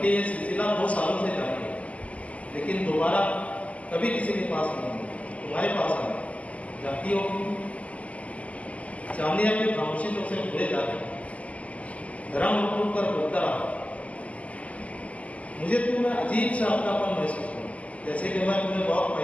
ये सिलसिला 2 सालों से जारी है, लेकिन दोबारा कभी किसी के पास नहीं, तुम्हारे पास आया। जानती हो चांदी अपनी खामोशी से उसे भूले जाते। धर्म उठ कर बोलता रहा। मुझे तुम्हें अजीब सा अपनापन महसूस हुआ, जैसे कि मैं तुम्हें बहुत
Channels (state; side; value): late; right; 0.068 ms